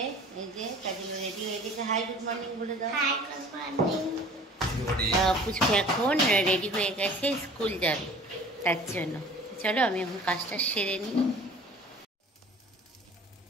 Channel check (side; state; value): both; normal; correlation 0.46